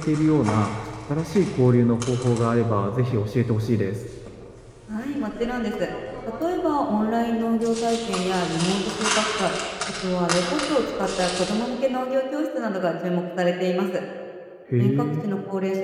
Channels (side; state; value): both; identical; correlation 1.00